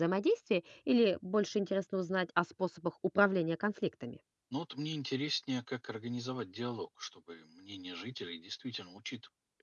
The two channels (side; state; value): both; identical; correlation 1.00